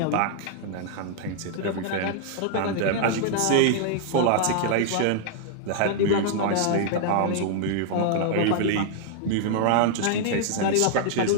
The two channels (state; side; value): different; both; correlation -0.01